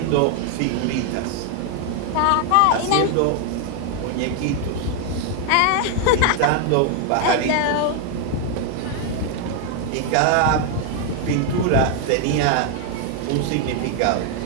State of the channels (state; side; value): different; both; correlation 0.00